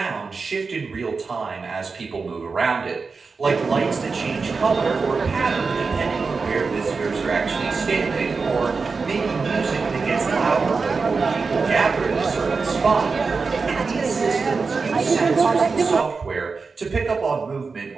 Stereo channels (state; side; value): quieter; left; 4.6 dB